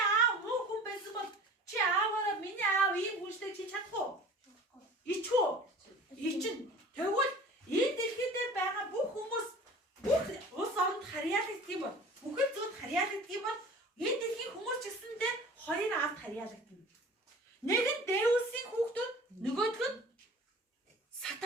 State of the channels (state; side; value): normal; both; correlation 0.43